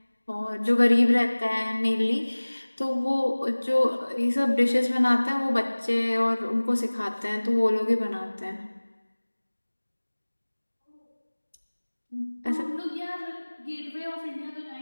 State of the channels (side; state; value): both; inverted; correlation -1.00